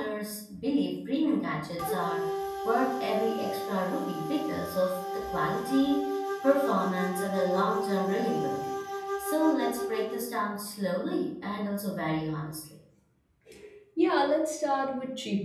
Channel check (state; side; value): identical; both; correlation 1.00